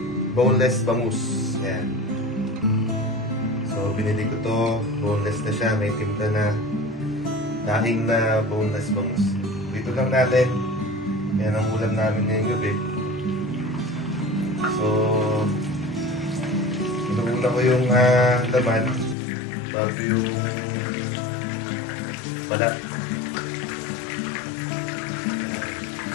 boneless bangus. Yan. So, binili ko to. Boneless na siya. May timpla na daing na boneless bangus. Dito lang natin. Yan ang ulam namin ngayong gabi. So, inuuna ko yung laman bago yung balat.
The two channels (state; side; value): drops out; right; at 19.2 s